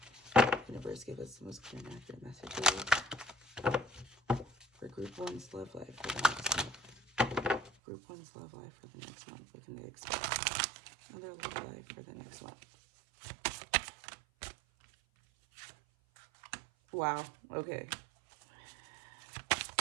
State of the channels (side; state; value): left; drops out; at 7.7 s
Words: Universe, give us the most clear and accurate messages for Group 1's love life for the next month. Group 1's love life for the next month. What can they expect? Another love life for the next month. Wow, okay.